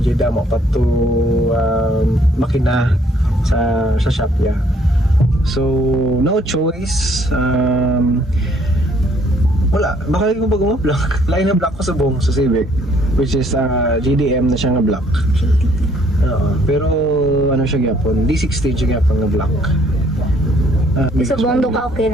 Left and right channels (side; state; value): both; normal; correlation 0.64